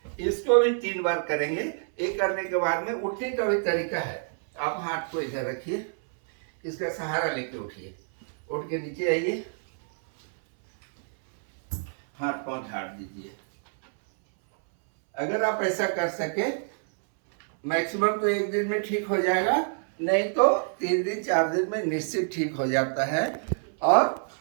इसको भी 3 बार करेंगे। ये करने के बाद में उठने का भी तरीका है। आप हाथ को इधर रखिए, इसका सहारा लेके उठिए, उठ के नीचे आइए, हाथ पांव झाड़ दीजिए। अगर आप ऐसा कर सके, मैक्सिमम तो 1 दिन में ठीक हो जाएगा, नहीं तो 3 दिन 4 दिन में निश्चित ठीक हो जाता है। और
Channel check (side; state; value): left; silent; 60 dB below the other